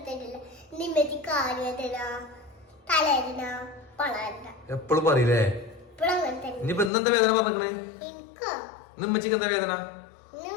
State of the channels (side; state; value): right; drops out; at 6.9 s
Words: എപ്പോഴും പറയില്ലേ? ഇനിയിപ്പോ ഇന്നെന്താ വേദന പറഞ്ഞേ? ഉമ്മച്ചിക്ക് എന്താ വേദന?